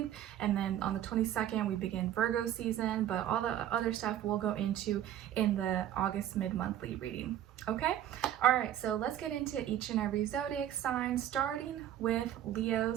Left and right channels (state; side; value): quieter; left; 11.6 dB